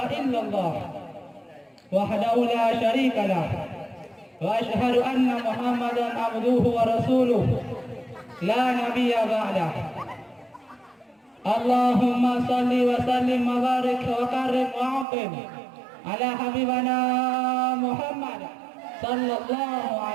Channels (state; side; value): drops out; left; at 15.1 s